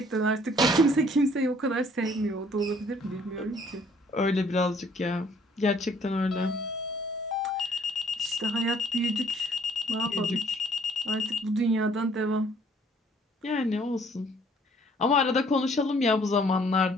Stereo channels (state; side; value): normal; both; correlation 0.60